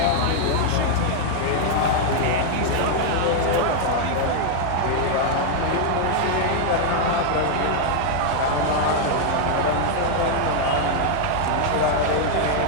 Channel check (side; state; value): both; different; correlation 0.00